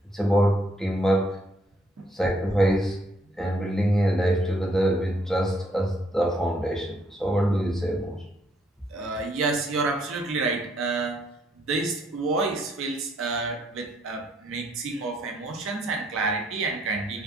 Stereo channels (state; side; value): normal; both; correlation 0.70